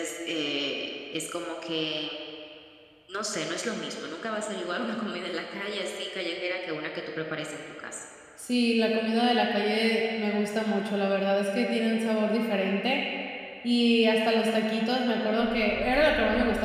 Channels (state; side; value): identical; both; correlation 1.00